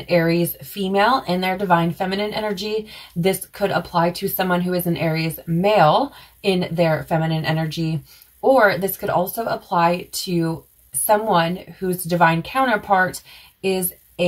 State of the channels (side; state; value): both; identical; correlation 1.00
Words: Aries female in their Divine Feminine energy. This could apply to someone who is an Aries male in their feminine energy, or this could also apply to someone whose divine counterpart is